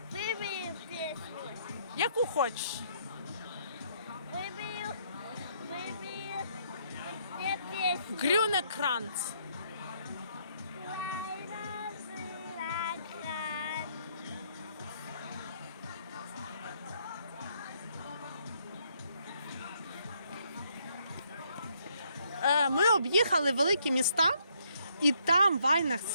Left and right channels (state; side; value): inverted; both; correlation -0.71